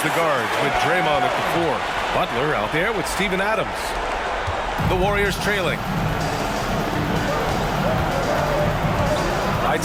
the guards with Draymond at the 4. Butler out there with Steven Adams. The Warriors trailing. Right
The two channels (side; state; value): both; identical; correlation 1.00